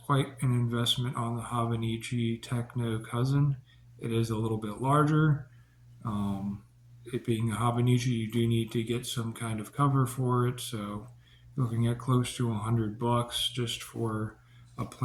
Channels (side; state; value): both; identical; correlation 1.00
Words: quite an investment on the Hobonichi Techo cousin. It is a little bit larger. It being a Hobonichi, you do need to get some kind of cover for it. So, looking at close to $100 just for a